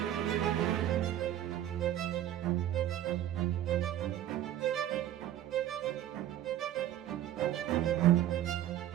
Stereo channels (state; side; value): quieter; left; 12.1 dB